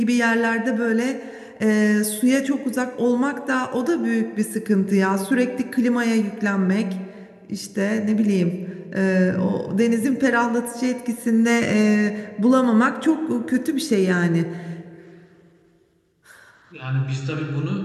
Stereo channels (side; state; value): both; identical; correlation 1.00